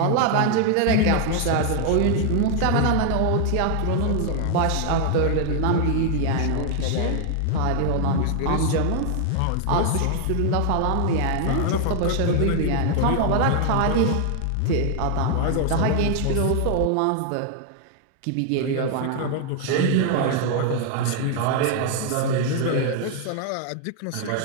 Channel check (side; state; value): both; different; correlation 0.00